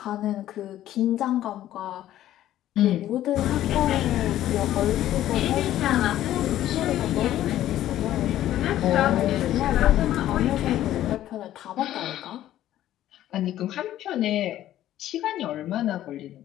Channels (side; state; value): right; quieter; 13.0 dB